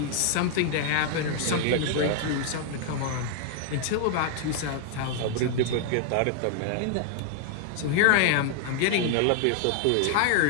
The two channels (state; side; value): different; both; correlation 0.00